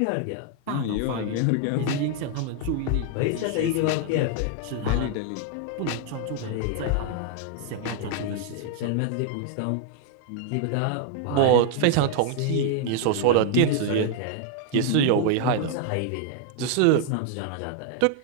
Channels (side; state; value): both; different; correlation 0.00